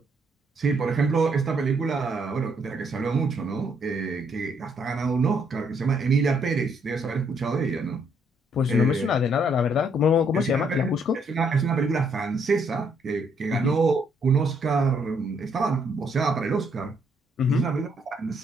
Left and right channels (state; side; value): normal; both; correlation 0.71